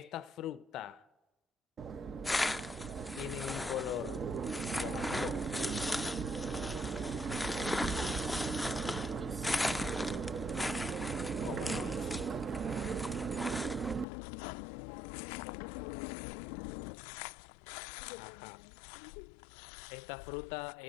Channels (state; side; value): drops out; right; at 14.1 s